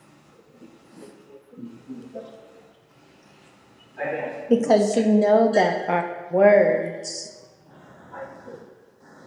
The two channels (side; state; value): both; identical; correlation 1.00